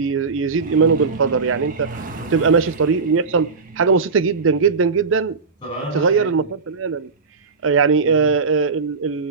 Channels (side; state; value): left; quieter; 4.7 dB